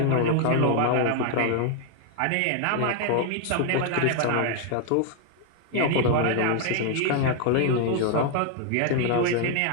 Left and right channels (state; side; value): different; both; correlation 0.00